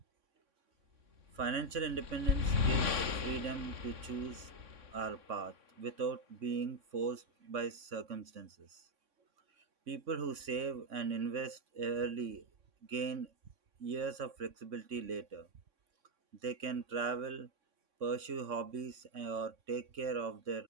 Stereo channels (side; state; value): left; late; 3.6 ms